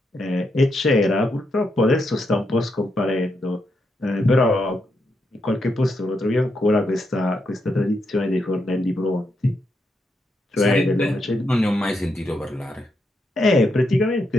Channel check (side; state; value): both; normal; correlation 0.82